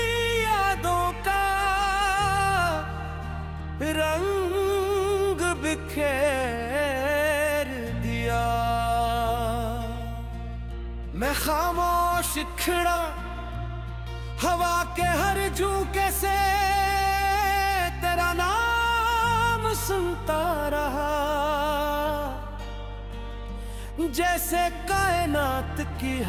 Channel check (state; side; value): identical; both; correlation 1.00